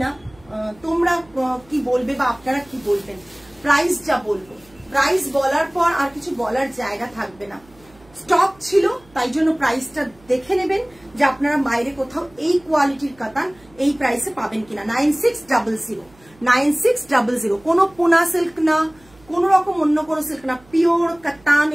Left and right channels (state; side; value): noise; right; hum, 28 dB below the sound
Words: না তোমরা কি বলবে বা আপনারা কি বলবেন প্রাইস যা বলবো প্রাইস বলার পর আর কিছু বলার জায়গা থাকবে না স্টক ছিল তাই জন্য প্রাইসটা দেখে নেবেন যে আপনারা বাইরে কোথাও এই কোয়ালিটির কাতান এই প্রাইসে পাবেন কিনা 9600 কোনো পোনা সিল্ক না কোন রকম অন্য কোনো সিল্ক না পিওর